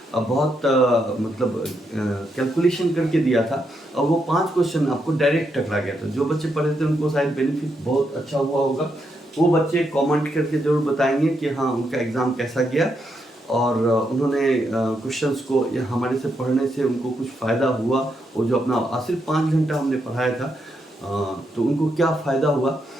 बहुत मतलब कैलकुलेशन करके दिया था और वो 5 क्वेश्चन आपको डायरेक्ट टकरा गया था। जो बच्चे पढ़े थे उनको शायद बेनिफिट बहुत अच्छा हुआ होगा। वो बच्चे कमेंट करके ज़रूर बताएंगे कि हाँ उनका एग्ज़ाम कैसा गया और उन्होंने क्वेश्चंस को या हमारे से पढ़ने से उनको कुछ फ़ायदा हुआ। वो जो अपना सिर्फ 5 घंटा हमने पढ़ाया था, तो उनको क्या फ़ायदा हुआ।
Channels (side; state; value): both; normal; correlation 0.80